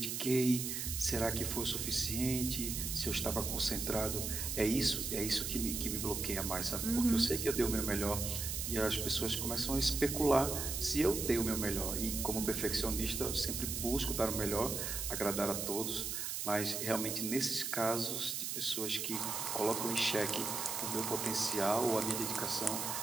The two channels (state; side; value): noise; right; hiss, 3 dB below the sound